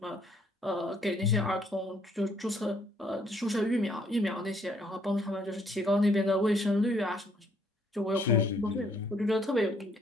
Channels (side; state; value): both; normal; correlation 0.66